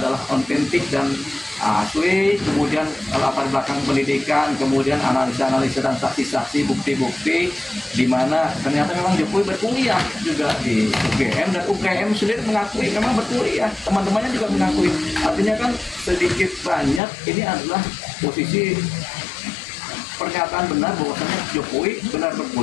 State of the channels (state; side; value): drops out; right; at 17.0 s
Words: otentik dan asli, kemudian latar belakang pendidikan, kemudian analisa-analisa dan saksi-saksi, bukti-bukti di mana ternyata memang Jokowi berkuliah juga di UGM dan UGM sendiri mengakui memang berkuliah, teman-temannya juga mengakui. Artinya kan sedikit banyak ini adalah posisi pernyataan benar bahwasanya Jokowi benar